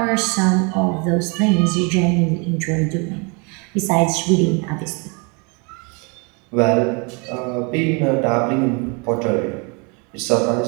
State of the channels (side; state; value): left; quieter; 32.3 dB